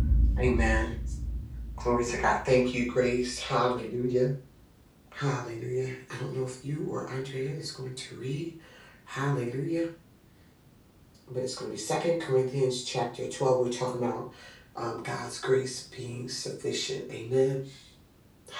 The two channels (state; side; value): identical; both; correlation 1.00